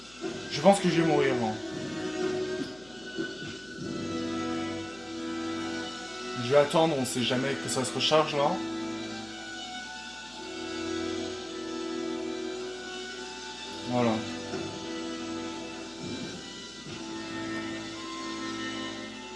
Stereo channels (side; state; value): left; noise; hum, 23 dB below the sound